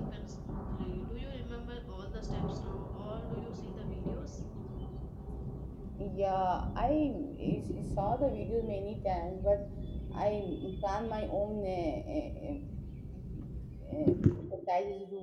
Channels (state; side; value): identical; both; correlation 1.00